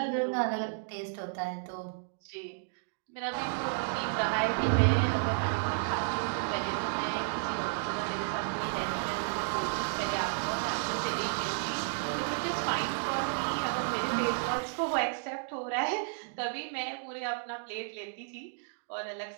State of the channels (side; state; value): left; silent; digital silence